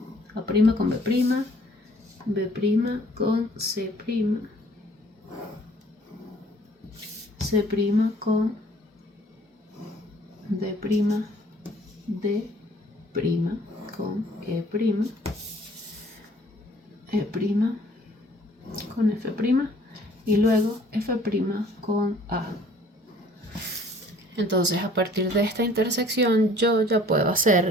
A' con B', B' con C', C' con D', D' con E', E' con F' y luego F' con A. Entonces a partir de esta intersección yo ya puedo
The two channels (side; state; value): both; normal; correlation 0.56